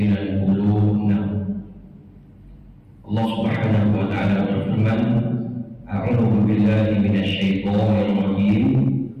Allah Subhanahu wa taala berfirman, a'udzu billahi minasyaitonir rajim,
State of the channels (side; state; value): both; identical; correlation 1.00